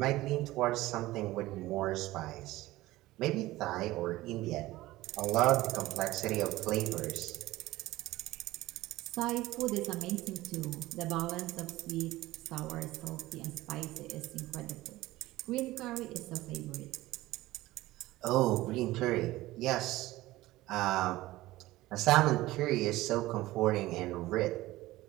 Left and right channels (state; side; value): quieter; left; 17.7 dB